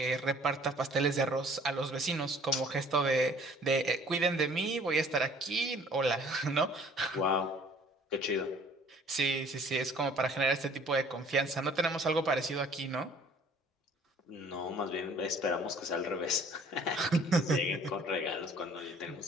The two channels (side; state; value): both; normal; correlation 0.54